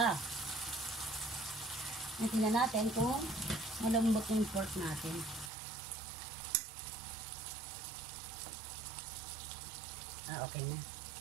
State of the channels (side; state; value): left; drops out; at 5.5 s